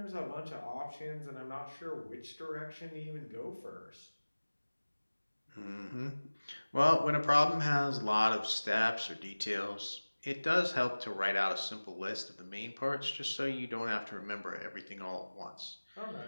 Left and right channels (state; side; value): inverted; both; correlation -1.00